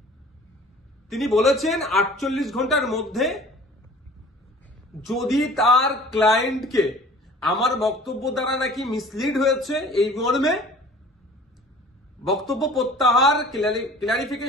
তিনি বলেছেন 48 ঘন্টার মধ্যে যদি তার ক্লায়েন্টকে আমার বক্তব্য দ্বারা নাকি মিসলিড হয়েছে এই মর্মে বক্তব্য প্রত্যাহার,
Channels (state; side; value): normal; both; correlation 0.47